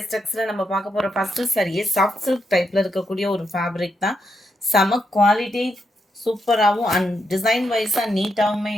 டெக்ஸில் நம்ம பார்க்க போகிற ஃபஸ்ட்டு சரியே சாஃப்ட் சில்க் டைப்பில் இருக்கக்கூடிய ஒரு ஃபேப்ரிக் தான். செம குவாலிட்டி, சூப்பராகவும் அண்ட் டிசைன் வைஸாக நீட்டாகவுமே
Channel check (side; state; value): both; normal; correlation 0.82